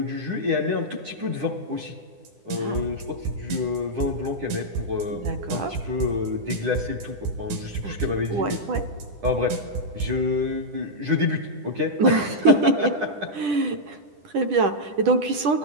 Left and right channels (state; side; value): late; left; 10 ms